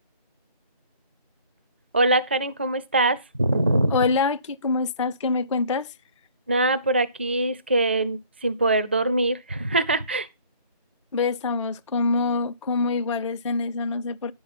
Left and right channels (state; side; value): inverted; both; correlation -0.53